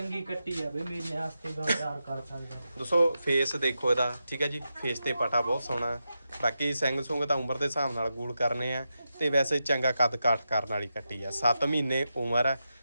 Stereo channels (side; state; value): both; inverted; correlation -0.88